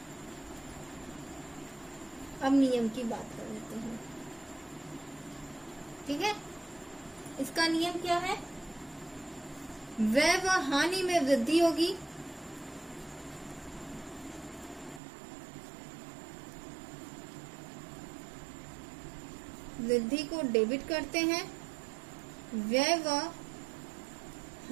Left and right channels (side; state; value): left; drops out; at 15.0 s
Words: अब नियम की बात कर लेते हैं। ठीक है, इसका नियम क्या है? व्यय व हानि में वृद्धि होगी, वृद्धि को डेबिट करते हैं, व्यय व